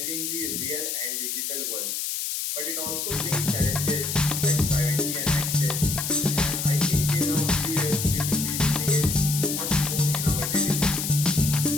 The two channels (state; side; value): noise; left; hiss, 2 dB below the sound